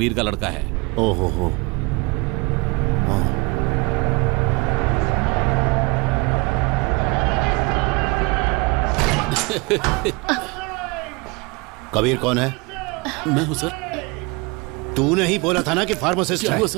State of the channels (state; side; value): quieter; left; 26.7 dB